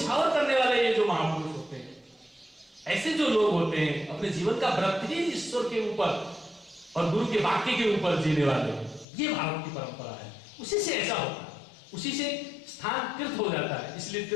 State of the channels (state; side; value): drops out; right; at 9.1 s